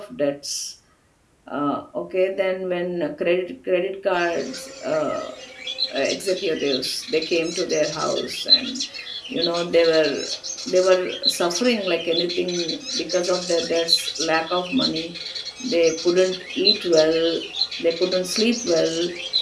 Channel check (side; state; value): both; identical; correlation 1.00